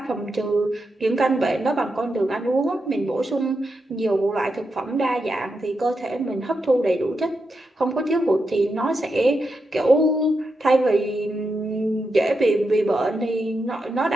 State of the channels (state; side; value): normal; both; correlation 0.86